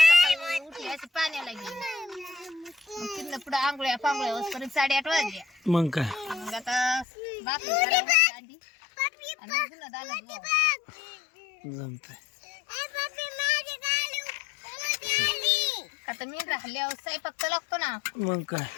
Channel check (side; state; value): right; drops out; at 7.1 s